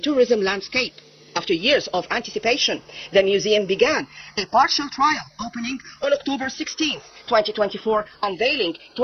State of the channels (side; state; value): both; identical; correlation 1.00